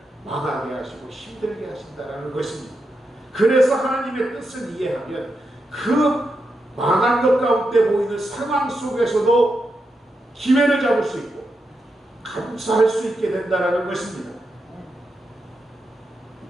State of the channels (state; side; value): normal; both; correlation 0.86